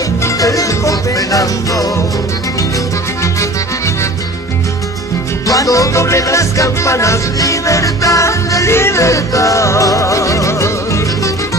te dejo penando. Cuando doblen las campanas, libertad, libertad.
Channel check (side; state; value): both; normal; correlation 0.43